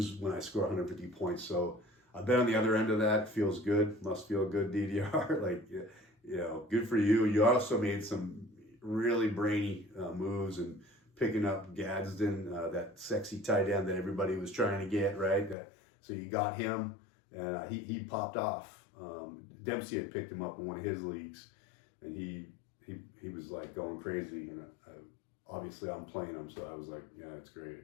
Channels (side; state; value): right; drops out; at 15.6 s